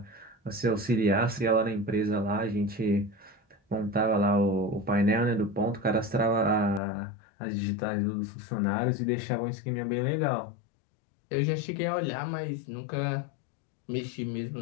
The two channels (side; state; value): right; drops out; at 6.8 s